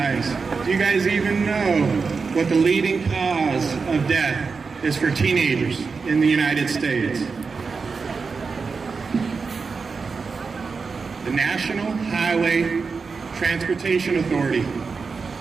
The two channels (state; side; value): quieter; left; 4.9 dB